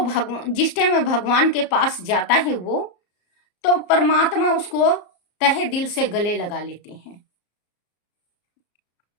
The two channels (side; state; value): right; late; 34 ms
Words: भगवान जिस टाइम में भगवान के पास जाता है वो तो परमात्मा उसको तहे दिल से गले लगा लेते हैं।